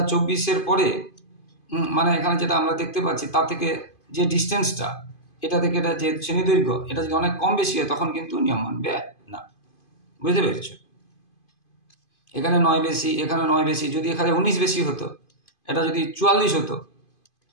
24-এর পরে, মানে এখানে যেটা আমরা দেখতে পাচ্ছি, তার থেকে যে ডিস্টেন্সটা, এটা থেকে এটা যে শ্রেণী দৈর্ঘ্য, এটা যদি অনেক কম বেশি হয়, তখন কিন্তু নিয়ম মানবে না। বুঝতে পেরেছো? এখানে 9 বেশি, এখানে 9 বেশি, যদি এখানে 19 বেশি হতো, এটা যদি 44 হতো,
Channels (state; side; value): late; right; 2.5 ms